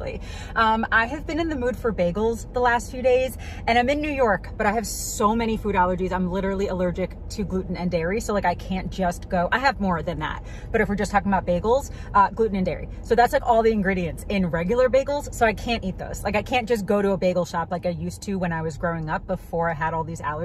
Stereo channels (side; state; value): both; identical; correlation 1.00